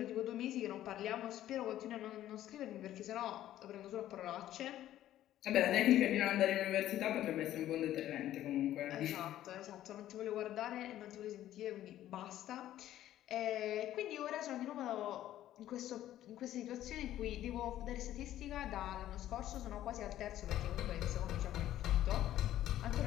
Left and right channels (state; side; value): quieter; right; 12.9 dB